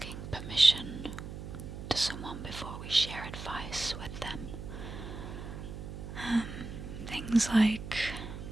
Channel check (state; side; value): noise; right; hum, 9 dB below the sound